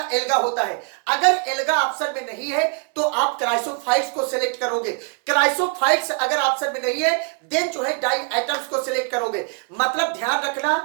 एल्गा होता है। अगर एल्गा ऑप्शन में नहीं है तो आप क्राइसोफाइट्स को सिलेक्ट करोगे। क्राइसोफाइट्स अगर ऑप्शन में नहीं है देन जो है डाई एटम्स को सिलेक्ट करोगे। मतलब ध्यान रखना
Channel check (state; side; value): quieter; left; 38.1 dB